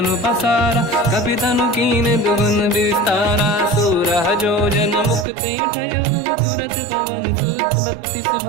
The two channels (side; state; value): left; drops out; at 5.2 s